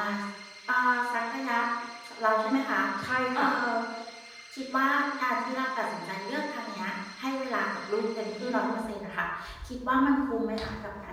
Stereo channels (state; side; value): identical; both; correlation 1.00